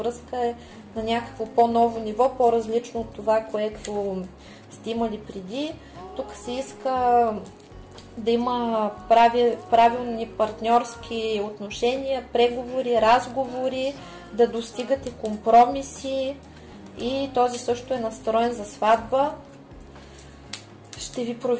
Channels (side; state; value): both; identical; correlation 1.00